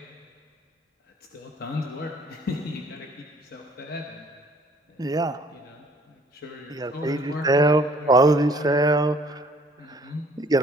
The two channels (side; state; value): both; normal; correlation 0.58